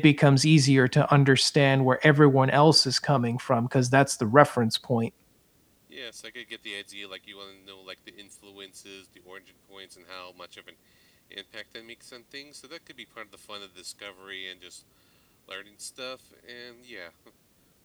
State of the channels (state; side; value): identical; both; correlation 1.00